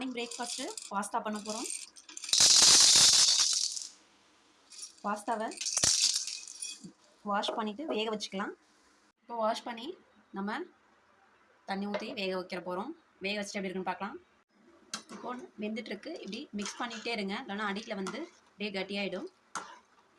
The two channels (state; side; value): identical; both; correlation 1.00